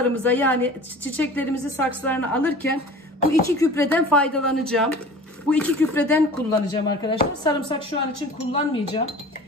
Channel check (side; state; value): both; normal; correlation 0.41